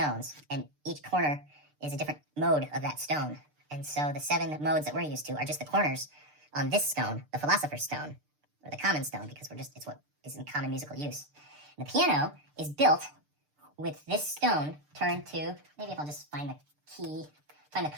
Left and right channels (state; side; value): late; left; 6.7 ms